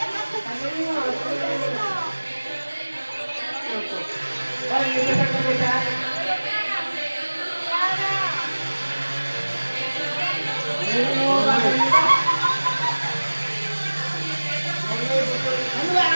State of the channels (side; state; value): both; inverted; correlation -1.00